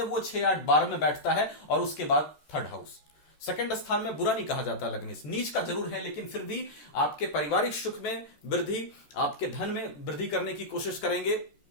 वो 6, 8, 12 में बैठता है और उसके बाद थर्ड हाउस। सेकंड स्थान में बुरा नहीं कहा जाता लग्नेश, नीच का जरूर है लेकिन फिर भी आपके पारिवारिक सुख में वृद्धि, आपके धन में वृद्धि करने की कोशिश करेंगे,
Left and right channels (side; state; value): right; late; 13 ms